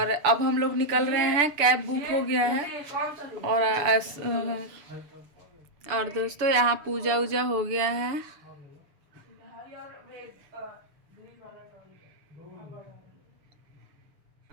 अब हम लोग निकल रहे हैं, कैब बुक हो गया है। और दोस्तों, यहाँ पूजा उजा हो गया है।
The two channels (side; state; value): left; late; 6.8 ms